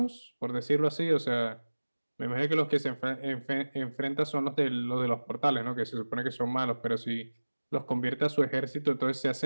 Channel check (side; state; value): both; inverted; correlation -1.00